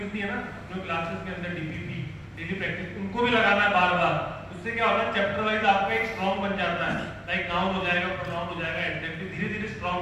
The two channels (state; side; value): identical; both; correlation 1.00